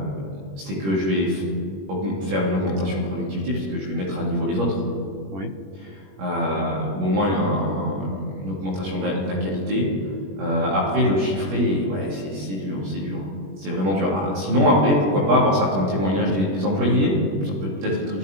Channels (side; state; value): left; late; 21 ms